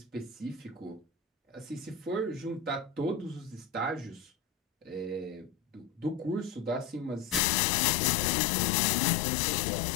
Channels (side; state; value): right; drops out; at 7.4 s